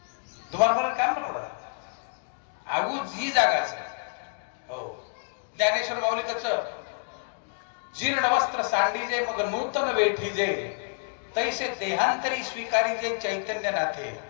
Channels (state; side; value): silent; right; digital silence